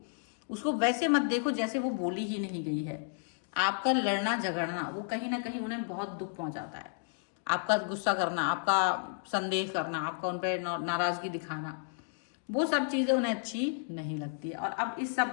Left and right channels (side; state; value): right; silent; digital silence